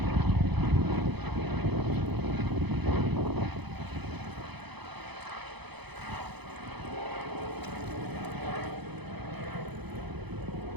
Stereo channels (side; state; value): left; late; 0.98 ms